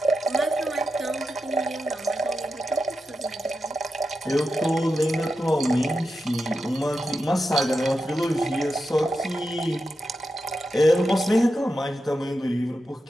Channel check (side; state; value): both; normal; correlation 0.89